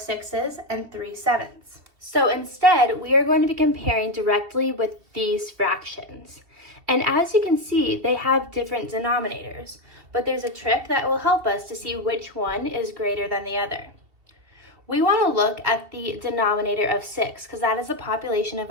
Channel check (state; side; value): late; left; 2.9 ms